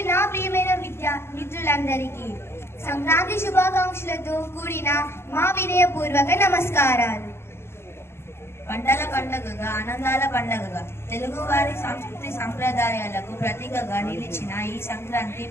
నా ప్రియమైన మిత్రులందరికీ సంక్రాంతి శుభాకాంక్షలతో కూడిన మా వినయపూర్వక నమస్కారాలు. పంటల పండుగగా, ఆనందాల పండుగగా, తెలుగువారి సంస్కృతి సంప్రదాయాలకు ప్రతీకగా నిలిచిన ఈ సంక్రాంతి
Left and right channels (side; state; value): right; late; 0.12 ms